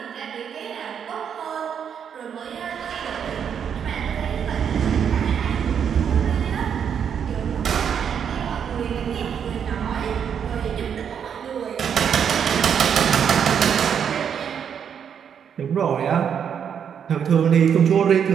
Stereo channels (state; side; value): quieter; left; 7.9 dB